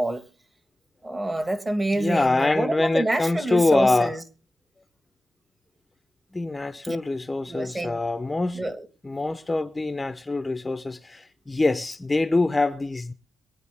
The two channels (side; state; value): both; normal; correlation 0.97